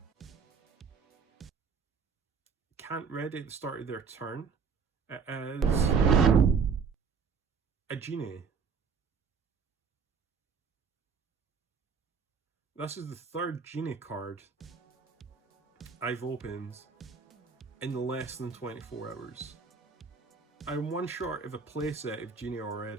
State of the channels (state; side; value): quieter; left; 5.8 dB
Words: Can't ready at the start of their turn. It is a genie. This is the third genie card I've opened in less than 24 hours. I'm one short of a playset of genie